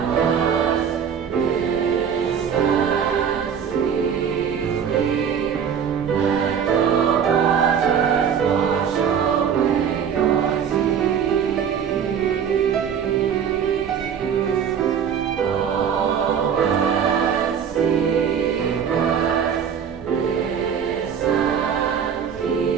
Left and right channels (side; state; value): left; quieter; 7.7 dB